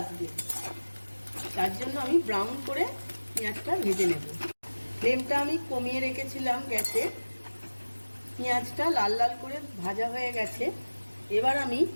তার জন্য আমি ব্রাউন করে পেঁয়াজটা ভেজে নেব। ফ্লেমটা আমি কমিয়ে রেখেছিলাম গ্যাসে। পেঁয়াজটা লাল লাল করে ভাজা হয়ে গেছে, এবার আমি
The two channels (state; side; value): inverted; both; correlation -1.00